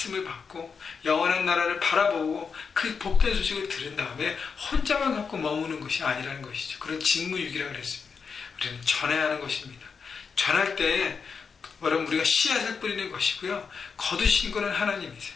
받고 영원한 나라를 바라보고 그 복된 소식을 들은 다음에 혼자만 갖고 머무는 것이 아니라는 것이죠. 그런 직무유기라고 그랬습니다. 우리는 전해야 하는 것입니다. 전할 때 여러분, 우리가 씨앗을 뿌리는 것이고요, 거두신 거는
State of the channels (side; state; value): right; quieter; 5.7 dB